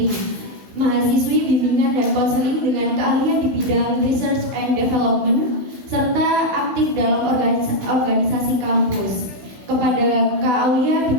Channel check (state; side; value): late; left; 16 ms